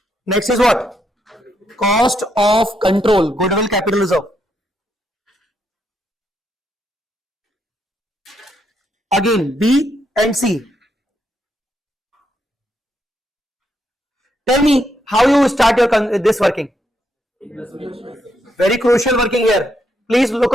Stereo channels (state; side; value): normal; both; correlation 0.78